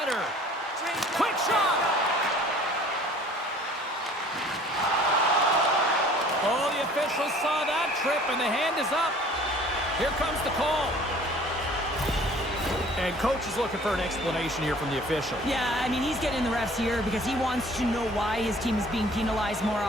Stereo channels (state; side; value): normal; both; correlation 0.51